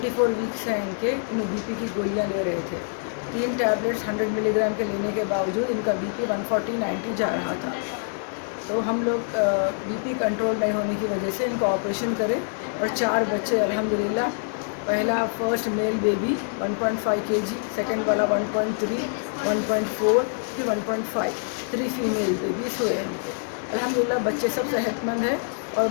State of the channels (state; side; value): silent; right; digital silence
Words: ویکس ہیں ان کے، انہوں بی پی کی گولیاں لے رہے تھے۔ 3 ٹیبلٹس 100 ملی گرام کے لینے کے باوجود ان کا بی پی 140-90 جا رہا تھا۔ تو ہم لوگ بی پی کنٹرول نہیں ہونے کی وجہ سے ان کو آپریشن کرے اور 4 بچے الحمدللہ۔ پہلا فرسٹ میل بیبی 1.5 kg، سیکنڈ والا 1.3، 1.4، پھر 1.5، 3 فیمیل بیبیز ہوئے ہیں ان کے۔ الحمدللہ بچے سب صحت مند ہیں اور